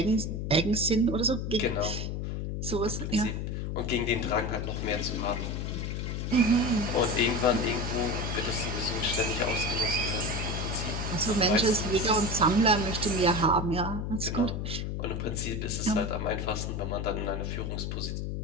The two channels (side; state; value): left; noise; hum, 3 dB below the sound